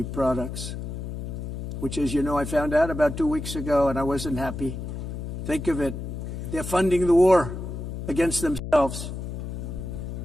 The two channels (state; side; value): noise; left; hum, 6 dB below the sound